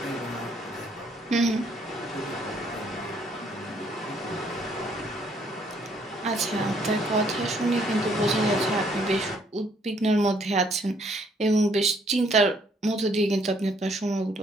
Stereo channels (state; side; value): normal; both; correlation 0.66